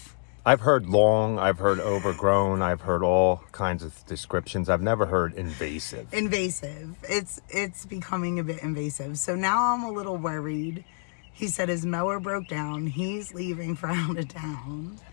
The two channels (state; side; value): silent; right; digital silence